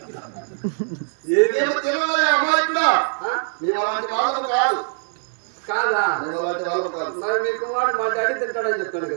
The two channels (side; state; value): left; silent; digital silence